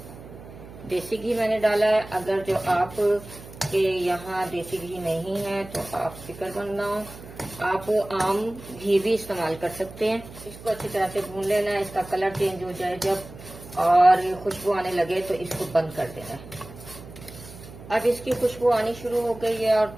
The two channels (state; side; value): noise; right; hum, 16 dB below the sound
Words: देसी घी मैंने डाला है। अगर जो आप के यहाँ देसी घी नहीं है तो आप फिक्रमंद ना हो, आप आम घी भी इस्तेमाल कर सकते हैं। इसको अच्छी तरह से भून लेना है। इसका कलर चेंज हो जाए जब और खुशबू आने लगे तो इसको बंद कर देना है। अब इसकी खुशबू आनी शुरू हो गई है और